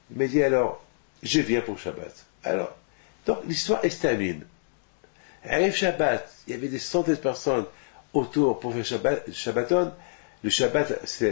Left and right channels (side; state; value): right; silent; digital silence